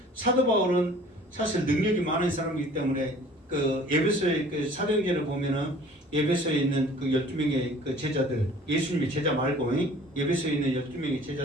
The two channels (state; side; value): normal; both; correlation 0.50